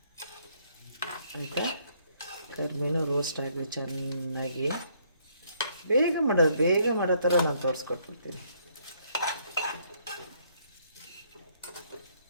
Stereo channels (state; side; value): inverted; both; correlation -0.68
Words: ಆಯಿತಾ. ಕರ್ಮೀನು ರೋಸ್ಟ್ ಆಗಲಿ ಚೆನ್ನಾಗಿ. ಬೇಗ ಮಾಡೋ ಥರ ನಾನು ತೋರಿಸ್ಕೊಟ್ಬಿಡ್ತೀನಿ.